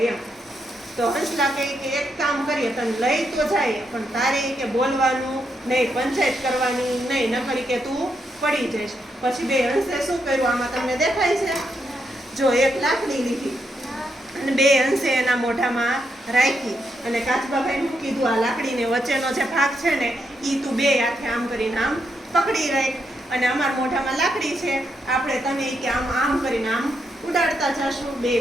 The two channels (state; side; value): normal; both; correlation 0.81